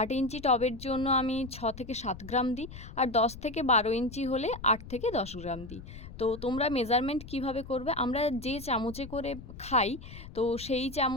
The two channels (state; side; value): noise; left; rumble, 14 dB below the sound